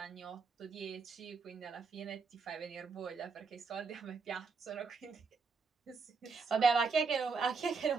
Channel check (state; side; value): quieter; left; 4.9 dB